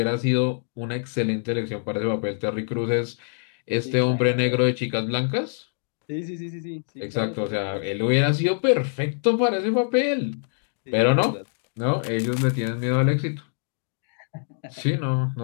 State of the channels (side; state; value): right; silent; digital silence